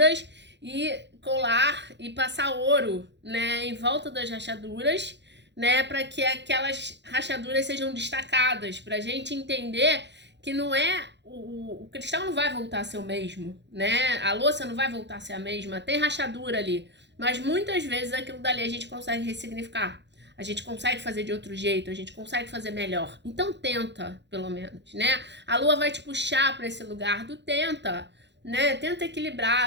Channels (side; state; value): left; late; 0.51 ms